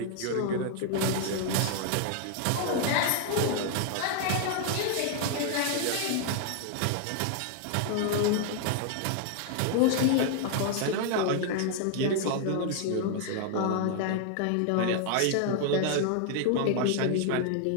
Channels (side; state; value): both; different; correlation 0.00